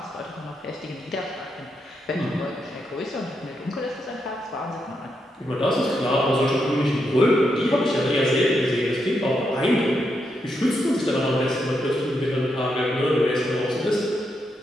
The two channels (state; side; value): normal; both; correlation 0.82